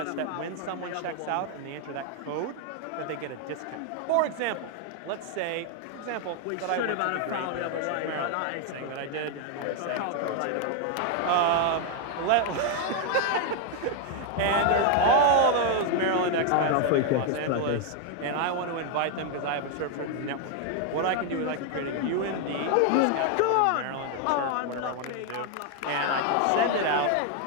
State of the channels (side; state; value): both; different; correlation 0.01